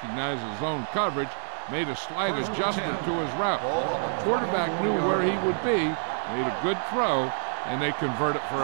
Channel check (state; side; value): silent; left; 57 dB below the other